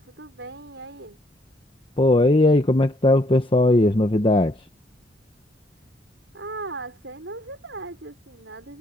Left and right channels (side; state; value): both; normal; correlation 0.68